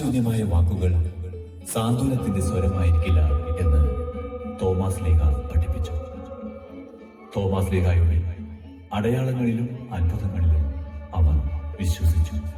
വാക്കുകൾ സാന്ത്വനത്തിന്റെ സ്വരമായിരിക്കില്ല എന്ന് തോമാശ്ലീഹ പഠിപ്പിച്ചു. തോമാശ്ലീഹായുടെ അടയാളങ്ങളിലും അത്ഭുതങ്ങളിലും അവർ വിശ്വസിച്ചു.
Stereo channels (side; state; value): both; identical; correlation 1.00